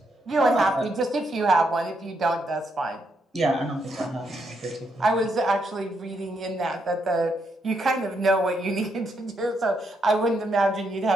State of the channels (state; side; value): normal; both; correlation 0.78